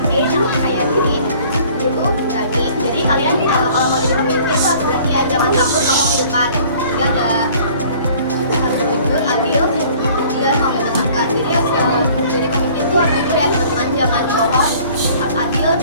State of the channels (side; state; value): both; inverted; correlation -0.52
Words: yang percaya diri. Itu berani. Jadi kalian kalau mau jadi pemimpin tuh harus berani ya, jangan takut ngomong di depan. Jadi ada harus jujur, adil, dan mau menyenangkan. Jadi jadi pemimpin tuh harus jujur ya teman-teman, jangan bohong, harus adil,